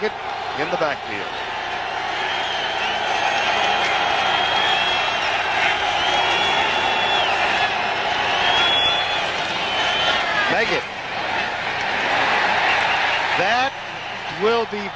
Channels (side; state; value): both; identical; correlation 1.00